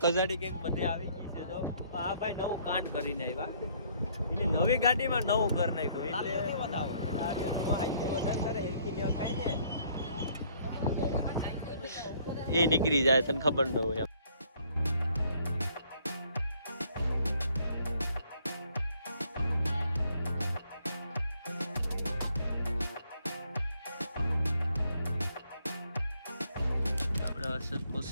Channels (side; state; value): both; inverted; correlation -0.64